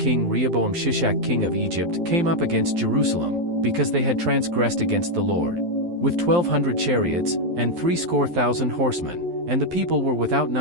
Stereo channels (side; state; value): left; late; 12 ms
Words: Rehoboam Shishak king of Egypt came up against Jerusalem, because they had transgressed against the Lord, with 1,200 chariots, and 70,000 horsemen, and the people were without